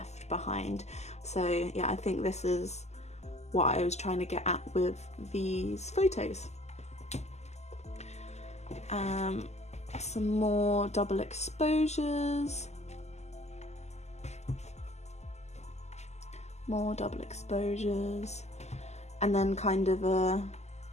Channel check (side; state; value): right; late; 0.33 ms